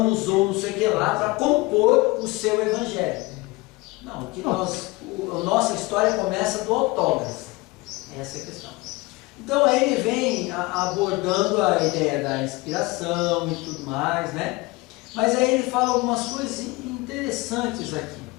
usou não sei o que lá para compor o seu evangelho. Não, a nossa história começa do autógrafo. Essa é a questão. Então aí ele vem abordando a ideia da inspiração e tudo mais, né? Mas aí ele fala algumas coisas interessantes aqui.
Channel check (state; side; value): quieter; right; 22.8 dB